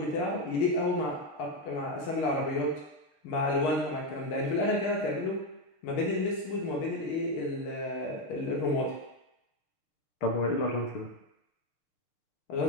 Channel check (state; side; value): late; right; 6.5 ms